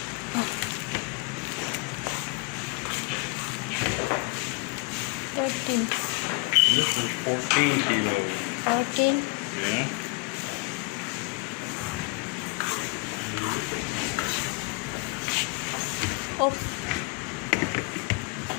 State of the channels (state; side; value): quieter; right; 27.3 dB